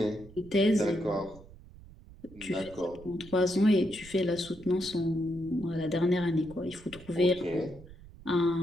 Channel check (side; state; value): right; noise; rumble, 20 dB below the sound